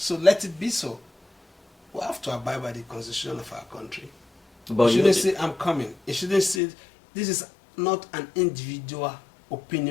let it be so. We have to abide by the constitution of our country. But You shouldn't say, I'm coming. You shouldn't say, this is not an individual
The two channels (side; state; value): right; drops out; at 6.6 s